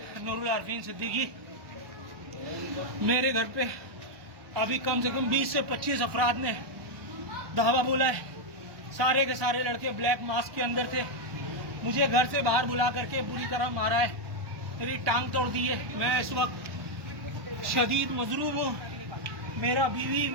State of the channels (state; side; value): late; left; 1.2 ms